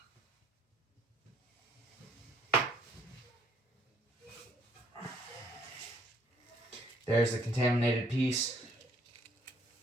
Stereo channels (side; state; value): both; normal; correlation 0.65